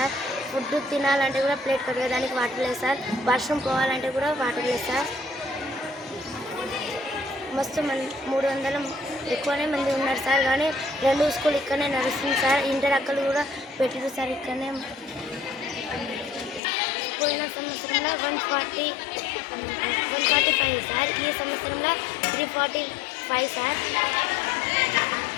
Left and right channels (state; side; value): drops out; right; at 16.6 s